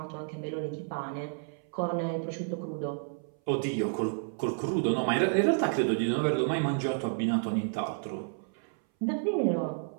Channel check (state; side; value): silent; left; 57 dB below the other